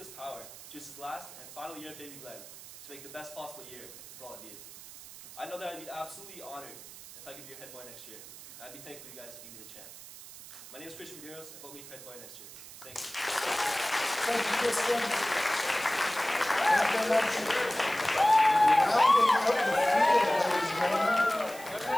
power to use his last and final year at Baby Glen to make the best possible year for all of you. I know that I'd be absolutely honored if I could be your head boy next year. I'd be thankful you guys to give me the chance. My name is Christian Medeiros, and vote me for head boy next year. Thank you. Thank you, Christian. Thank you very much. Rounding out the field, ladies and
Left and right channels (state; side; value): noise; right; hiss, 16 dB below the sound